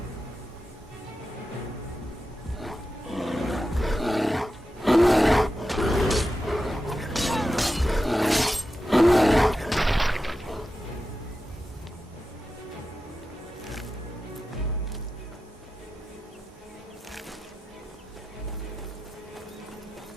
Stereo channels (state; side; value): normal; both; correlation 0.91